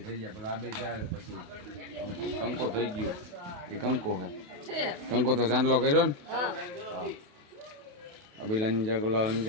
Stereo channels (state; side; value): late; left; 28 ms